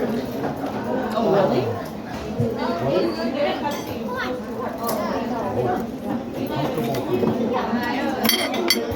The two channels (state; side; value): identical; both; correlation 1.00